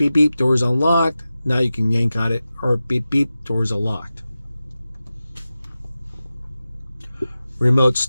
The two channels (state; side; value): inverted; both; correlation -0.94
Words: beep, door's unlocked. Now you can yank on it, or beep, beep, door's unlocked. Remote